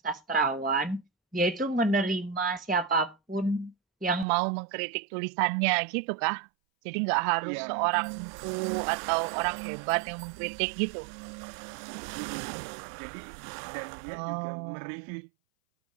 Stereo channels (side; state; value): left; drops out; at 4.2 s